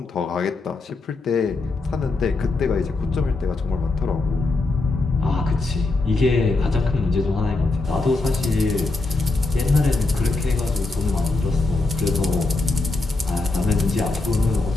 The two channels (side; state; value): right; quieter; 3.4 dB